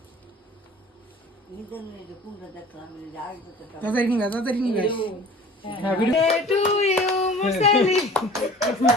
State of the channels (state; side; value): normal; both; correlation 0.45